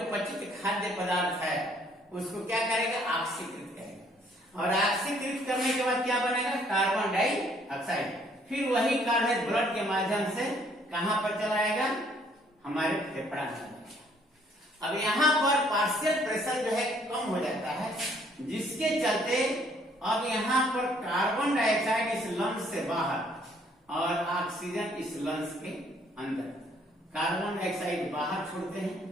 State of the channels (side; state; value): both; normal; correlation 0.63